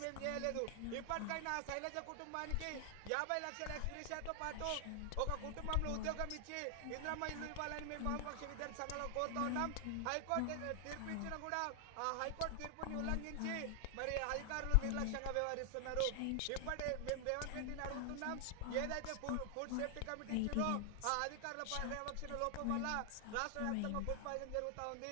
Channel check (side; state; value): both; different; correlation 0.00